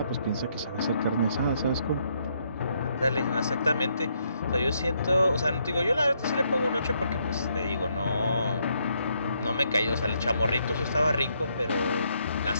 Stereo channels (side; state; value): both; inverted; correlation -0.74